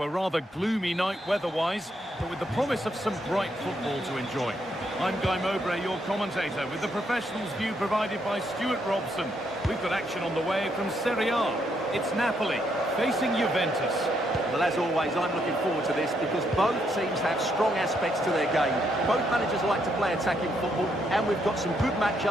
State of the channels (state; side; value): normal; both; correlation 0.76